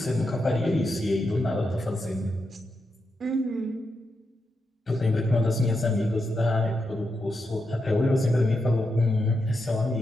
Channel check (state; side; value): normal; both; correlation 0.85